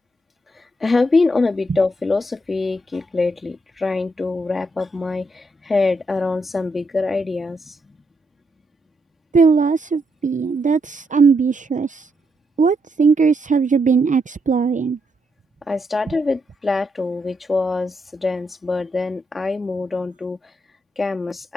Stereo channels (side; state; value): both; normal; correlation 0.79